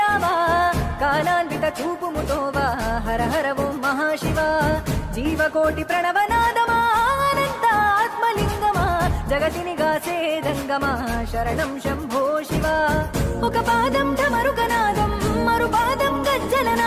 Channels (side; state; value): both; identical; correlation 1.00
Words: కాలాన్విత చూపుముతోవా హర హర ఓం మహాశివ జీవకోటి ప్రణవనాదమా అనంత ఆత్మలింగమా జగతిని గాసే జంగమా శరణం శంభో శివ. ఒక పాదం ఢమరుకనాదం మరు పాదం